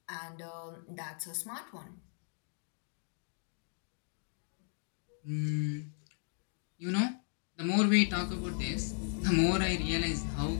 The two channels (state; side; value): silent; right; 54 dB below the other